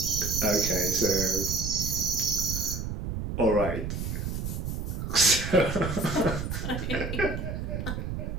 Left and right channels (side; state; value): right; noise; rumble, 4 dB below the sound